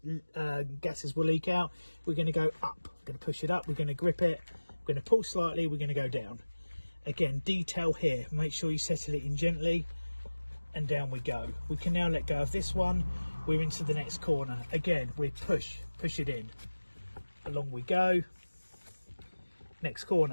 gases will leak out. We're going to go up. We're going to push it up. We're going to grip it. We're going to pull slightly. We're going to go down. Again, detail here. Make sure you settle it in gently, and down we go. We can now let go of this one. We're into the next corner. Again, we push it in. Along we go. Next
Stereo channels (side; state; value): both; inverted; correlation -1.00